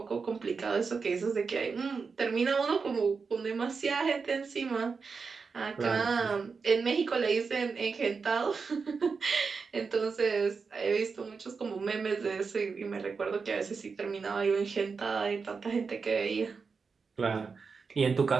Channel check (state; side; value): quieter; left; 5.1 dB